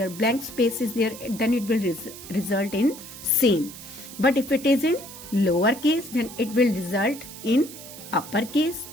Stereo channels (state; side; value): noise; right; hiss, 14 dB below the sound